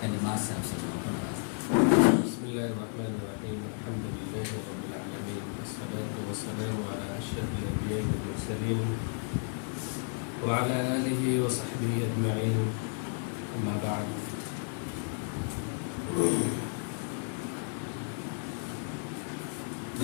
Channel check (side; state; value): right; silent; 56 dB below the other